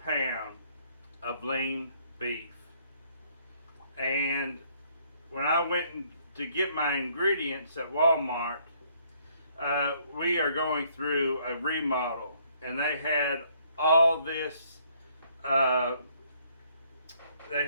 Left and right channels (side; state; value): both; inverted; correlation -0.66